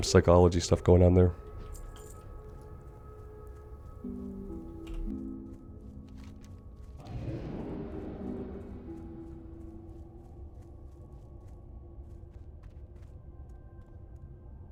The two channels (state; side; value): identical; both; correlation 1.00